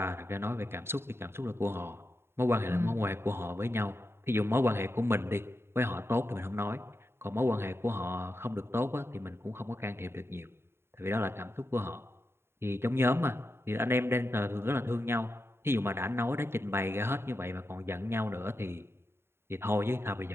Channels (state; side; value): late; left; 0.12 ms